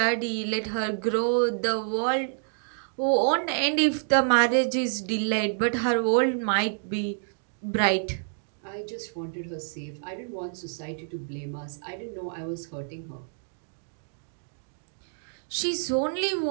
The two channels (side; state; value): left; silent; digital silence